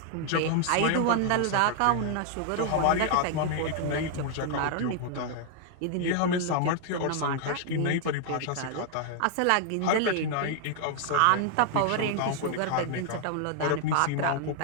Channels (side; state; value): both; different; correlation 0.00